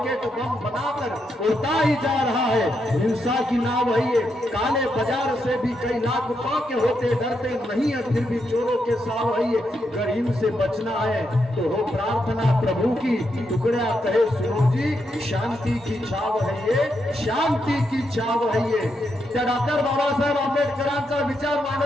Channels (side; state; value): both; normal; correlation 0.82